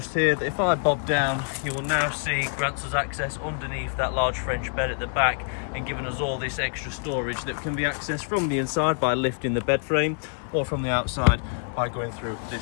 here that if I bob down, you will now see grants us access underneath that large French bed at the back, and giving us all this extra storage that can be accessed from the inside by lifting the bed frame, or from the outside by going through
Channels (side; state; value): right; silent; 61 dB below the other